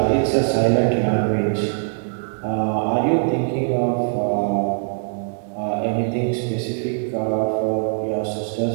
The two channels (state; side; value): silent; left; 64 dB below the other